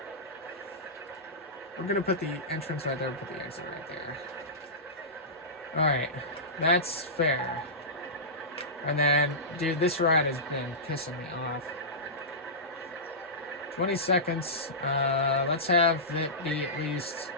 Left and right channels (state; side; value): normal; both; correlation -0.16